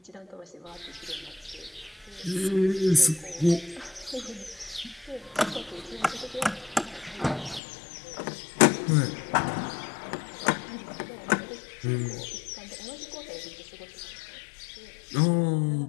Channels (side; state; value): right; drops out; at 7.6 s